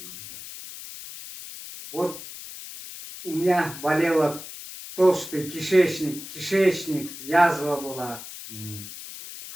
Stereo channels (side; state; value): left; noise; hiss, 12 dB below the sound